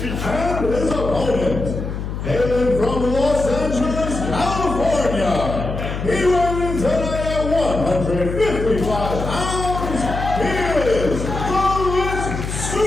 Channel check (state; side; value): noise; left; hum, 5 dB below the sound